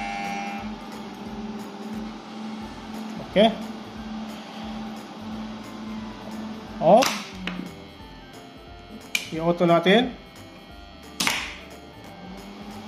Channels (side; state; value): both; identical; correlation 1.00